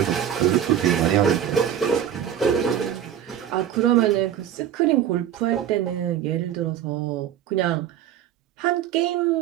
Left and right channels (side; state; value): left; quieter; 10.1 dB